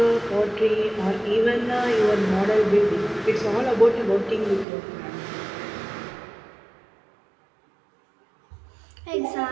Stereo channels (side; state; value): left; drops out; at 4.7 s